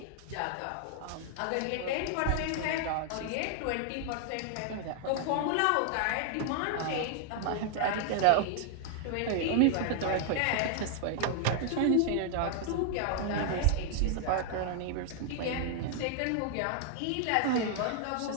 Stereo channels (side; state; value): both; different; correlation 0.00